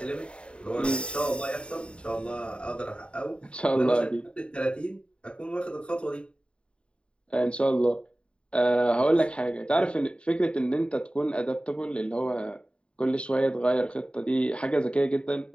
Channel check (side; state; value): right; late; 0.055 ms